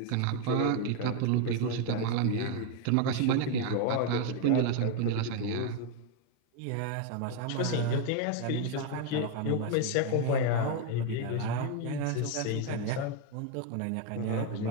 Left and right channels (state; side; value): different; both; correlation 0.01